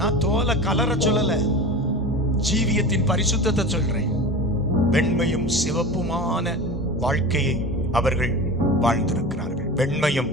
நான் தோலை கலர சொல்லல, ஜீவியத்தின் பரிசுத்தத்தை சொல்றேன். வெண்மையும் சிவப்புமான வாழ்க்கையை அவர்கள் வாழ்ந்திருக்கிறார்கள். வெண்மையும்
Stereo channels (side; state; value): both; normal; correlation 0.31